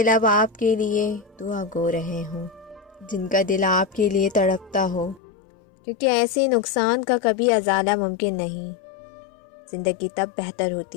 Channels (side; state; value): right; drops out; at 5.2 s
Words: لب آپ کے لیے دعا گو رہے ہوں، جن کا دل آپ کے لیے تڑپتا ہو، کیونکہ ایسے نقصان کا کبھی ازالہ ممکن نہیں۔ زندگی تب بہتر